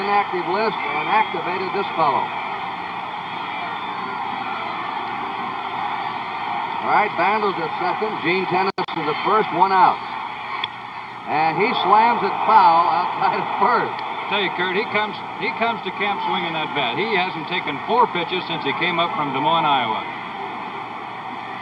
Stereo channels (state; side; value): identical; both; correlation 1.00